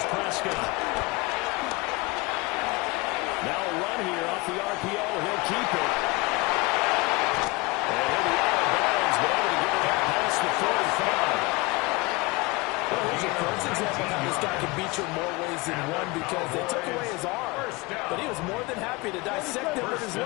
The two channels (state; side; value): quieter; right; 24.2 dB